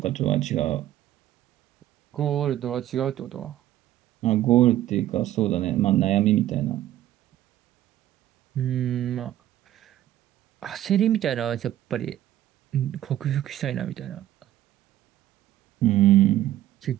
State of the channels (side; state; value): left; quieter; 13.2 dB